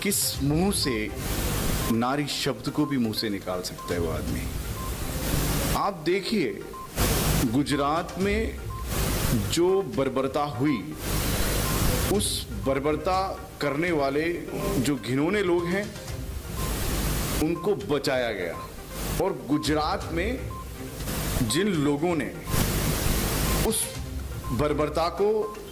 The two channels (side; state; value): both; identical; correlation 1.00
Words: किस मुंह से नारी शब्द को भी मुंह से निकाल सकता है वो आदमी। आप देखिए गुजरात में जो बर्बरता हुई, उस बर्बरता करने वाले जो घिनौने लोग हैं उनको बचाया गया। और गुजरात में जिन लोगों ने उस बर्बरता को